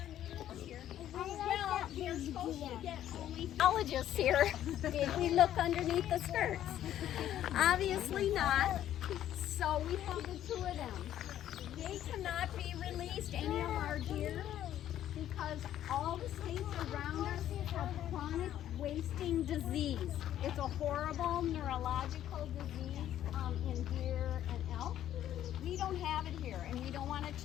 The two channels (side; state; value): right; quieter; 11.7 dB